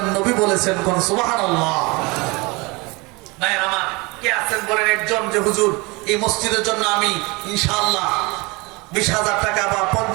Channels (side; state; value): left; quieter; 26.0 dB